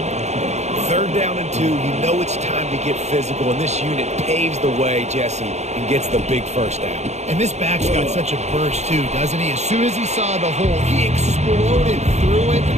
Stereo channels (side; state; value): left; late; 0.33 ms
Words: 3rd down and 2. You know it's time to get physical, and this unit paves the way, Jesse, and gets the big first down. And this back's got such a burst, too, doesn't he? As soon as he saw the hole, he exploded through it and